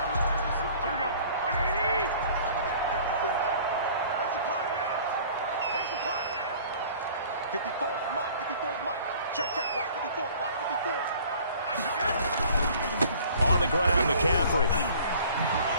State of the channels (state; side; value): inverted; both; correlation -0.50